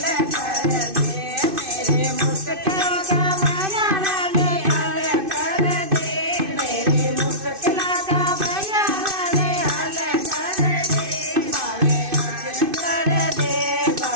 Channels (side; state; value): left; late; 2.6 ms